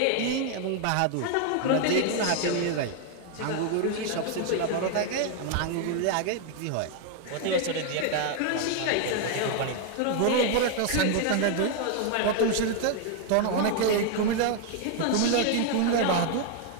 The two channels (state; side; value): different; both; correlation 0.00